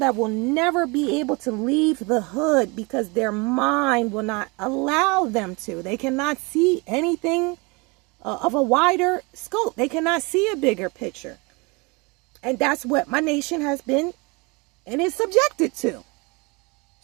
will never be able to leave the hood because their mind will not allow them to. They cannot see anything of a wider scope. They cannot see a bigger picture. And that's what my nation has been and is subjected to.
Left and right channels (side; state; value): left; quieter; 27.8 dB